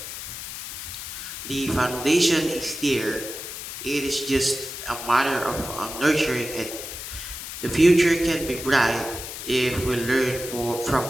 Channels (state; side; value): noise; left; hiss, 9 dB below the sound